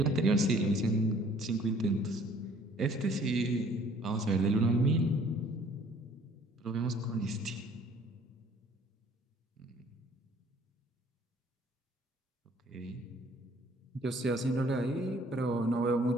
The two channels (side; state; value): both; normal; correlation 0.57